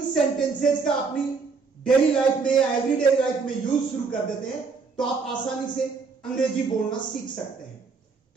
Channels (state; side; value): quieter; left; 4.8 dB